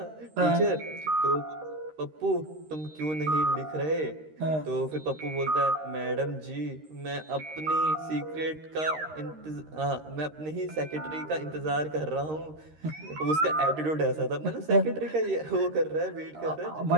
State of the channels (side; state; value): left; late; 13 ms